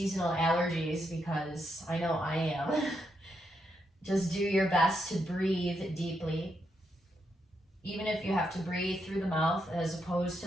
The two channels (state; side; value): normal; both; correlation 0.81